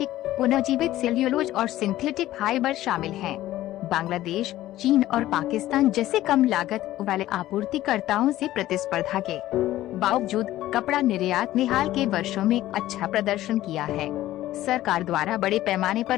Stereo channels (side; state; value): right; quieter; 14.7 dB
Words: पुनर्जीवित सेल्यूलोज और सिंथेटिक फाइबर शामिल हैं। बांग्लादेश, चीन और पाकिस्तान जैसे कम लागत वाले आपूर्तिकर्ताओं से प्रतिस्पर्धा के बावजूद कपड़ा निर्यात ने हाल के वर्षों में अच्छा प्रदर्शन किया है। सरकार द्वारा बड़े पैमाने